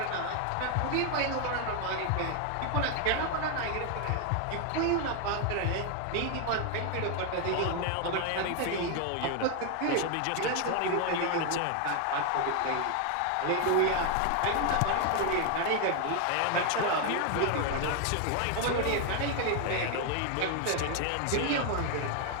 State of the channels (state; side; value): different; both; correlation 0.01